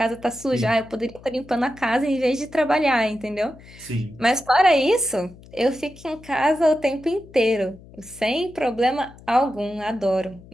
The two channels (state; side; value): noise; left; hum, 21 dB below the sound